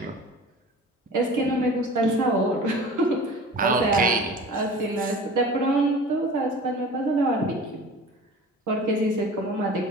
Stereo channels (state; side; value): normal; both; correlation 0.40